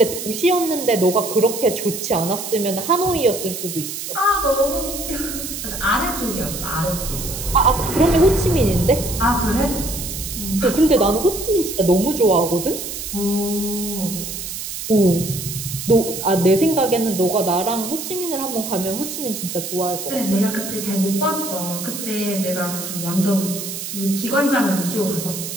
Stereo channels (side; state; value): right; noise; hiss, 7 dB below the sound